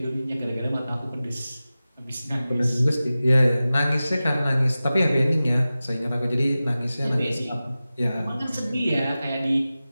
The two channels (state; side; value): inverted; both; correlation -0.96